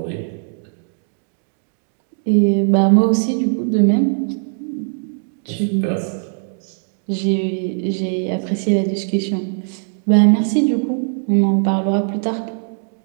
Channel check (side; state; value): left; silent; digital silence